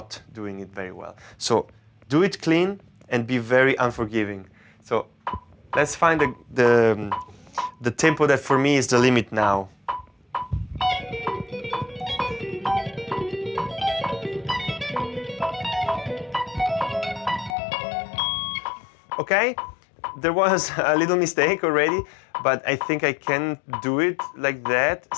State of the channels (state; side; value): drops out; right; at 17.6 s